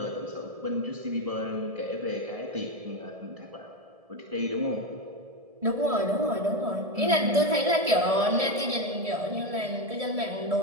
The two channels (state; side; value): late; left; 1.7 ms